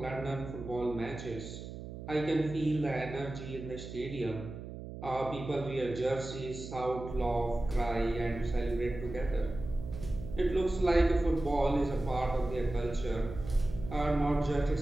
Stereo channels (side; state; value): right; noise; hum, 10 dB below the sound